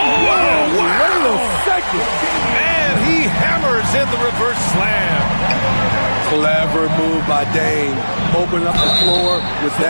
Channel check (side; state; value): both; inverted; correlation -1.00